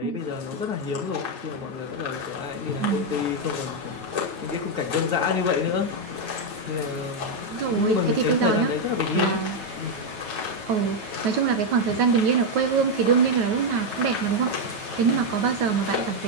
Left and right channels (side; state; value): left; late; 9.3 ms